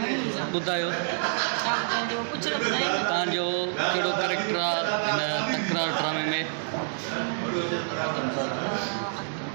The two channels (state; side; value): silent; left; digital silence